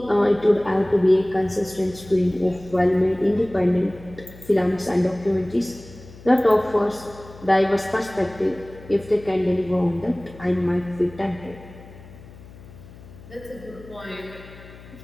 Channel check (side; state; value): left; noise; hum, 19 dB below the sound